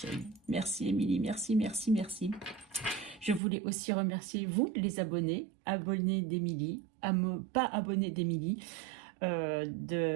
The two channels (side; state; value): left; drops out; at 3.4 s